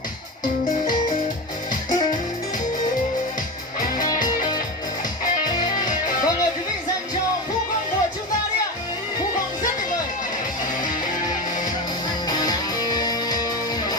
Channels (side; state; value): both; normal; correlation 0.22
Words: Vâng, mời quý vị dành cho Phú Quang của chúng ta đi ạ. Phú Quang rất tuyệt vời.